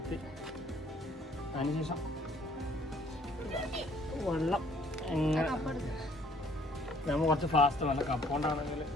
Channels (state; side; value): normal; both; correlation 0.60